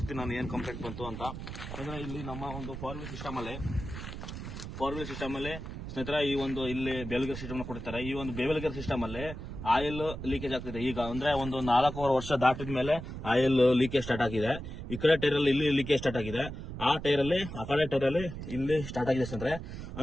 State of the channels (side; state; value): right; noise; rumble, 8 dB below the sound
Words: ನಾನು ಏನ್ ಕಂಪ್ಲೇಂಟ್ ಬಂತು ಅಂತ. ಅಂದ್ರೆ ಇಲ್ಲಿ ನಮ್ಮ ಒಂದು 4 ವೀಲ್ ಸಿಸ್ಟಮ್ ಅಲ್ಲಿ ಸ್ನೇಹಿತರೆ, ಈ ಒಂದು ಇಲ್ಲಿ ಬೇಲ್ಗೇರ್ ಸಿಸ್ಟಮ್ ಕೊಡ್ತಾರೆ. ಈ ಒಂದು ಬೇಲ್ಗೇರ್ ಸಿಸ್ಟಮ್ ಅಲ್ಲಿ ಆಯಿಲ್ ಲೀಕೇಜ್ ಆಗ್ತಿದೆ. ಈಗ ಅಂದ್ರೆ ಒಂದು 4 ವರ್ಷ ದಾಟಿದ ಮೇಲೆ ಆಯಿಲ್ ಲೀಕೇಜ್ ಸ್ಟಾರ್ಟ್ ಆಗಿದೆ. ಈ ಕಡೆ ಟೈರ್ ಅಲ್ಲಿ ಇಲ್ಲಿ ಲೀಕೇಜ್ ಸ್ಟಾರ್ಟ್ ಆಗಿದೆ, ಆ ಕಡೆ ಟೈರ್ ಅಲ್ಲಿ ಇಲ್ಲಿ ಸ್ಟಾರ್ಟ್ ಆಗಿದೆ ಸ್ನೇಹಿತರೆ.